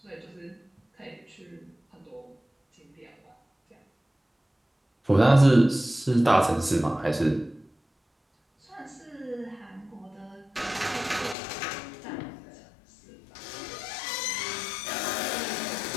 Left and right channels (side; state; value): right; drops out; at 11.4 s